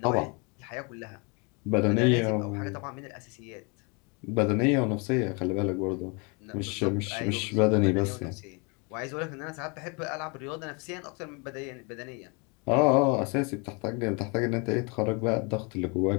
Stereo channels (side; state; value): right; quieter; 31.8 dB